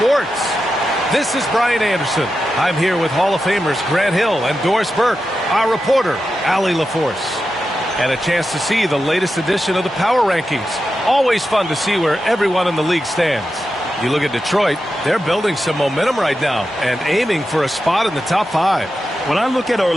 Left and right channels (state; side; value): normal; both; correlation 0.90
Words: This is Brian Anderson. I'm here with Hall of Famers Grant Hill and Doris Burke, our reporter, Allie LaForce. And a chance to see the latest edition of the Power Rankings. Always fun to see where everyone in the league stands. You look at Detroit, they're building some momentum right now and aiming for a spot in the top 5. When I look at